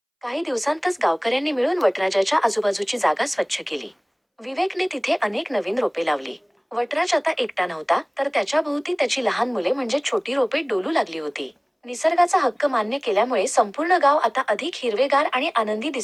काही दिवसांतच गावकऱ्यांनी मिळून वटराजाच्या आजूबाजूची जागा स्वच्छ केली. विवेकने तिथे अनेक नवीन रोपे लावली. वटराज आता एकटा नव्हता, तर त्याच्या भोवती त्याची लहान मुले म्हणजे छोटी रोपे डोलू लागली होती. निसर्गाचा हक्क मान्य केल्यामुळे संपूर्ण गाव आता अधिक हिरवेगार आणि आनंदी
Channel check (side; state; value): both; identical; correlation 1.00